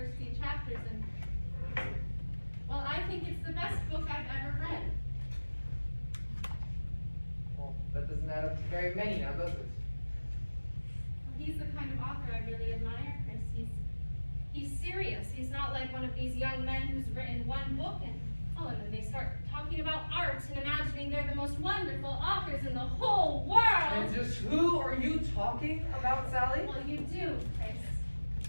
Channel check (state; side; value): inverted; both; correlation -1.00